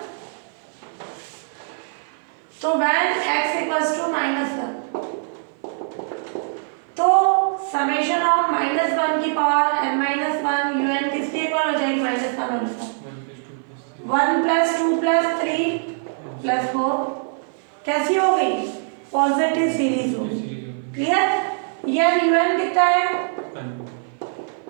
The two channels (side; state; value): left; silent; 57 dB below the other